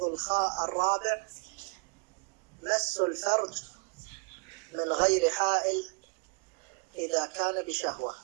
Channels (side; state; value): left; quieter; 34.6 dB